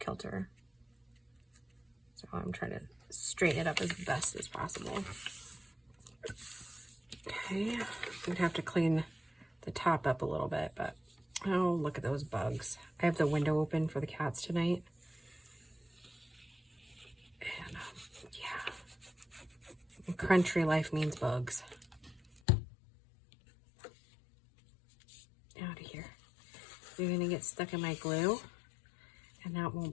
So I'm trying to straighten it up as best as possible. Okay, I'm gonna have to clean the top up a little bit, but oh, look at those bugs. I have the window open for the cats tonight. And yeah, country life means bugs. Out of here. You're gonna get stuck in my glue, and that won't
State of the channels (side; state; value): right; drops out; at 22.4 s